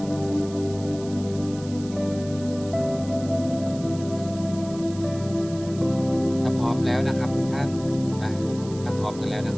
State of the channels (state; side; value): noise; right; hiss, 18 dB below the sound